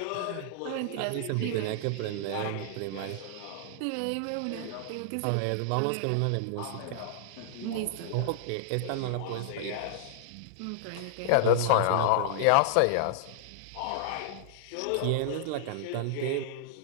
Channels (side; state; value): both; different; correlation -0.01